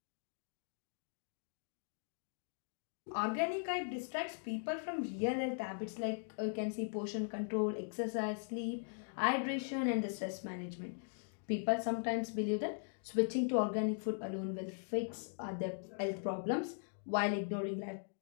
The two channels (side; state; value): right; silent; digital silence